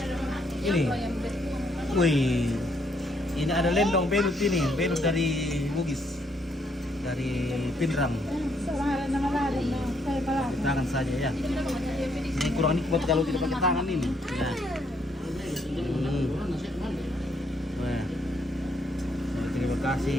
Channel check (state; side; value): normal; both; correlation 0.72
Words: Ini, wih, ini ada lendong belut ini, belut dari Bugis, dari Pinrang. Tangan saja ya. Ini kurang nikmat kalau tidak pakai tangan ini. Nah. Wah. Terima